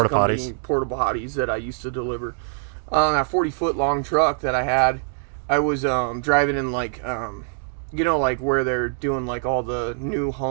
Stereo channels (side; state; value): left; silent; digital silence